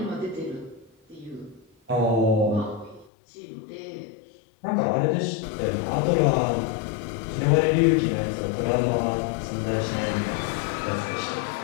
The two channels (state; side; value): drops out; right; at 3.1 s